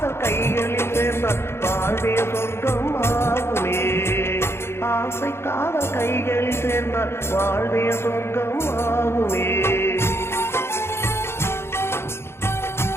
கைகளில் சேர்ந்த வாழ்வே சொர்க்கம் ஆகுமே ஆசை காதல் கைகளில் சேர்ந்த வாழ்வே சொர்க்கம் ஆகுமே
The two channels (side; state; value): right; late; 0.12 ms